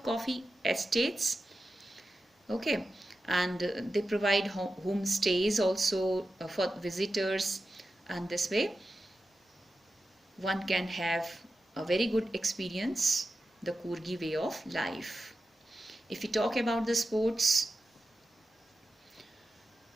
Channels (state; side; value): normal; both; correlation 0.92